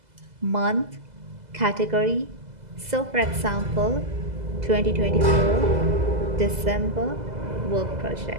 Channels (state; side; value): late; left; 2.0 ms